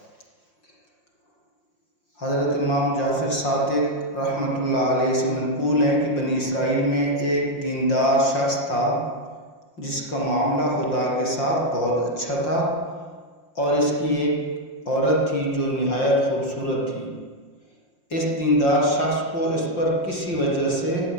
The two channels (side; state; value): right; late; 5.7 ms